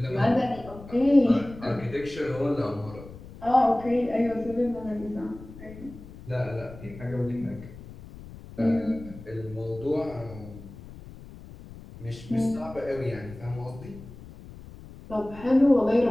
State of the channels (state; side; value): noise; left; rumble, 16 dB below the sound